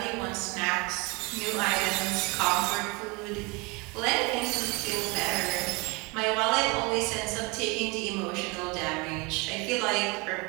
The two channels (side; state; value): left; quieter; 27.6 dB